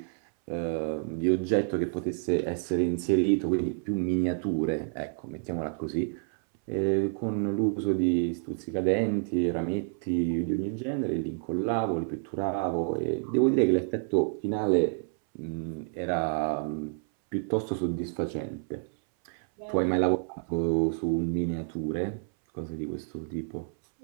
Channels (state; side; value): silent; left; 59 dB below the other